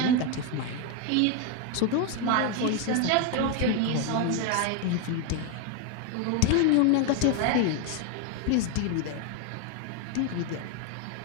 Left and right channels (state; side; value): different; both; correlation 0.01